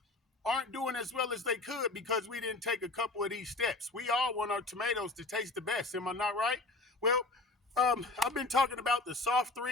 aren't doing as well as they could because we didn't take a couple of these steps. We all want our tomatoes to taste the best. Am I not right? Well, I've been talking about the soft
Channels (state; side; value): quieter; right; 3.2 dB